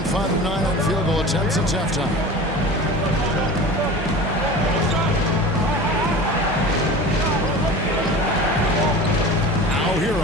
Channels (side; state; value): both; normal; correlation 0.35